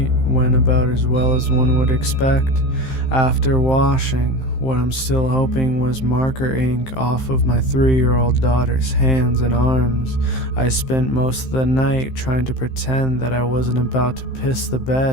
went about as well as one would expect. After washing what I'm still hoping was marker ink off of my 3-year-old daughter's hands and arms, I spent most of the night trying to pretend that I wasn't about to piss the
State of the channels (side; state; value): right; late; 15 ms